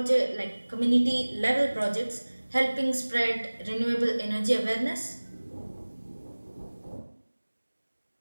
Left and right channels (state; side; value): inverted; both; correlation -1.00